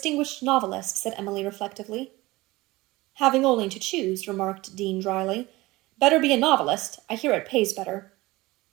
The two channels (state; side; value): quieter; left; 20.2 dB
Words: novelist, said Emily reflectively. Having only to choose, remarked Dean dryly. Better be a novelist. I hear it pays better.